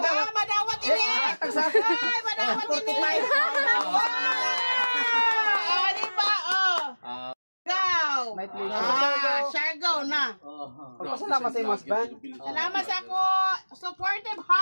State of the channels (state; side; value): inverted; both; correlation -1.00